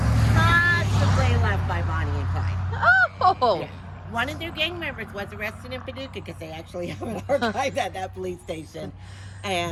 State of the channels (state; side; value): identical; both; correlation 1.00